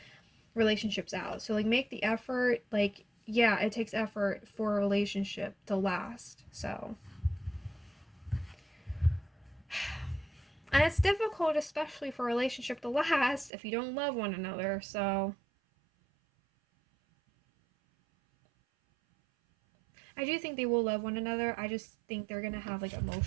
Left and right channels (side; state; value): left; drops out; at 13.5 s